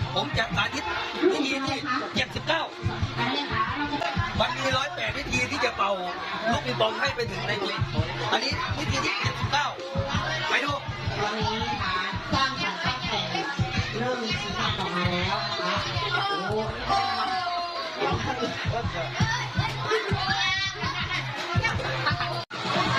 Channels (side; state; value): both; identical; correlation 1.00